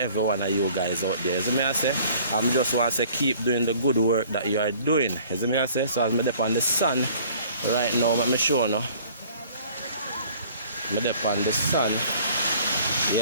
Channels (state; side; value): inverted; both; correlation -0.53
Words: one of you guys out there. As I say, I'm just want to say keep doing the good work that you are doing. As I say, so as I'm up on the sun right now, let me show you. I'm up on the sun,